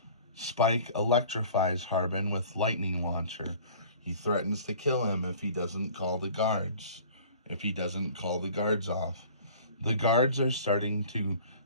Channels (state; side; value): inverted; both; correlation -0.47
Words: Spike electrifies Harbin with lightning launcher. He threatens to kill him if he doesn't call the guards off. The guards are starting to